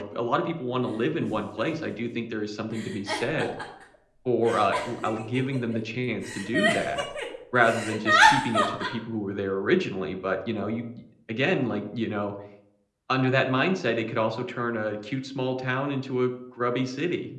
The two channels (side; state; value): both; identical; correlation 1.00